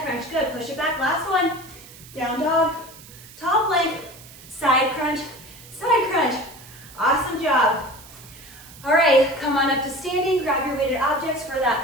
good. Push it back, last one. Down dog, tall plank, side crunch, side crunch. Awesome job. All right, come on up to standing. Grab your weighted objects for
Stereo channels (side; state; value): right; noise; hiss, 19 dB below the sound